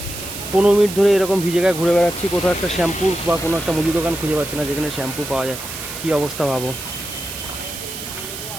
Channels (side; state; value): right; noise; hiss, 9 dB below the sound